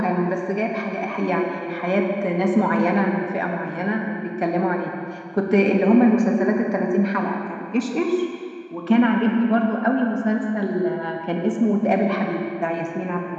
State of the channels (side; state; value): both; identical; correlation 1.00